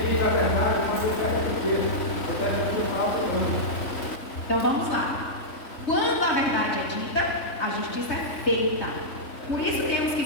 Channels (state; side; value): late; right; 3.5 ms